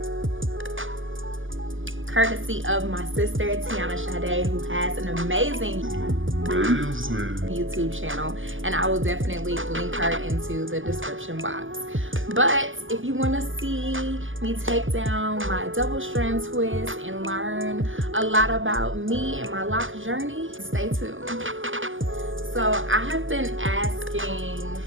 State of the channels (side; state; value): left; late; 0.58 ms